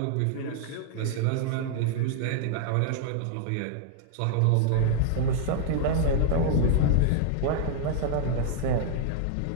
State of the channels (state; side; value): different; both; correlation -0.01